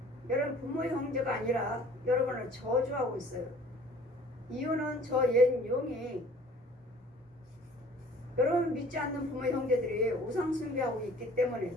여러분 부모의 형제가 아니라 여러분을 저주하고 있어요. 이유는 저 옛 용이 여러분 믿지 않는 부모의 형제들이 우상 숭배하고 있기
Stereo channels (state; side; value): normal; both; correlation 0.51